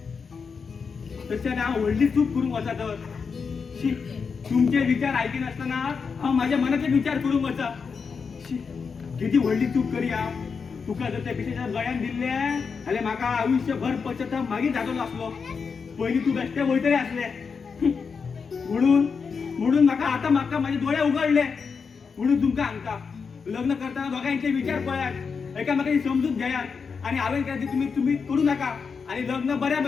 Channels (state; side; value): quieter; right; 5.6 dB